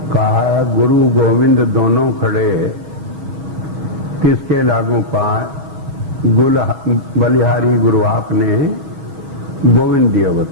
कहा गुरु गोविंद दोनों खड़े, किसके लागू पाए, बलिहारी गुरु आपने गोविंद दिया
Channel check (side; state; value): left; late; 7.0 ms